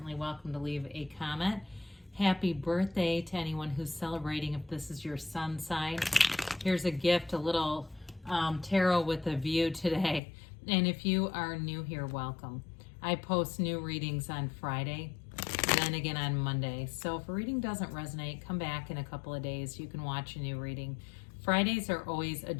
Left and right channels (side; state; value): right; drops out; at 10.2 s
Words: welcome to leave a comment. Happy birthday to anyone who's celebrating if this is your sun sign. Here's a gift, a little tarot with a view today. And if you are new here, welcome. I post new readings on Friday, then again on Monday. So if a reading doesn't resonate, come back in a couple of days. You can watch a new reading. Fridays are always a